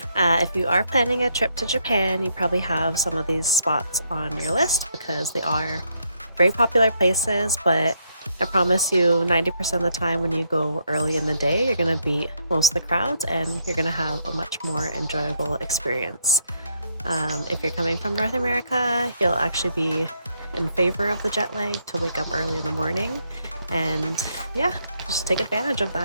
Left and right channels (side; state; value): both; inverted; correlation -0.74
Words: If you are planning a trip to Japan, you probably have some of these spots on your list because they are very popular places, but I promise you 90% of the time when you go early in the day, you're going to beat most of the crowds and you're going to have a much more enjoyable experience. If you're coming from North America, you'll actually be in favor of the jet lag to wake up early in the morning, and yeah, just take advantage of